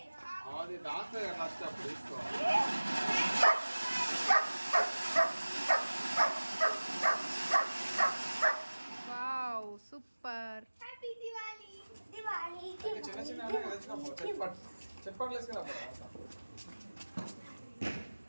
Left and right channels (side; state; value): both; inverted; correlation -1.00